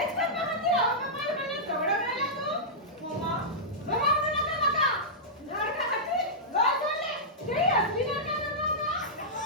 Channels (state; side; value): normal; both; correlation -0.13